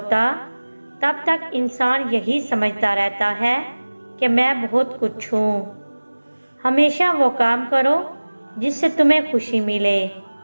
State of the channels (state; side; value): inverted; both; correlation -1.00